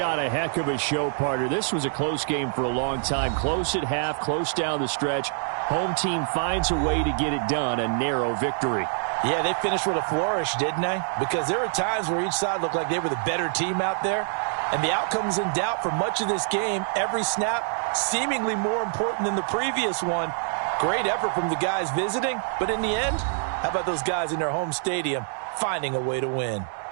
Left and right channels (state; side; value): silent; left; digital silence